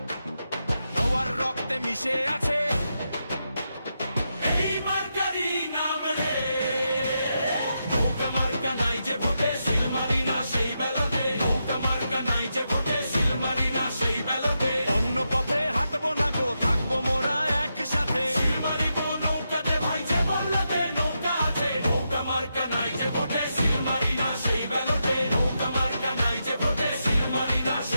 নওয়ার রক্তে মিশে আছে এই মার্কারি নাম রে। নৌকা মার্কা নাই যে ভোটে, সিল মারি না সেই ব্যালটে। নৌকা মার্কা নাই যে ভোটে, সিল মারি না সেই ব্যালটে। অন্য পথে হাঁটবো না গো, থাকবো মোরা একসাথে। সিল মারিব নৌকাতে ভাই যে বলতে নৌকা আছে। নৌকা মার্কা নাই যে ভোটে, সিল মারি না সেই ব্যালটে। নৌকা মার্কা নাই যে ভোটে, সিল মারি না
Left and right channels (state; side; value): inverted; both; correlation -0.85